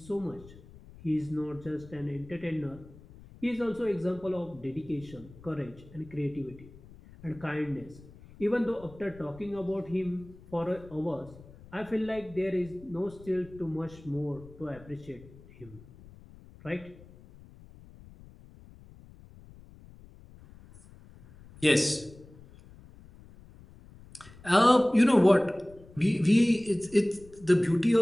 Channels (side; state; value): left; noise; rumble, 21 dB below the sound